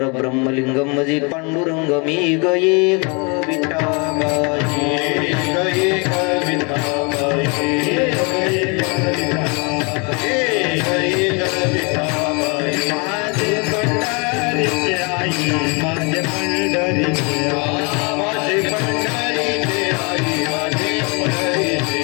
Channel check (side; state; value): right; quieter; 32.0 dB